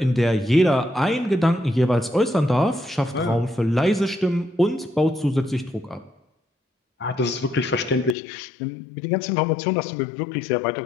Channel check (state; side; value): drops out; right; at 8.2 s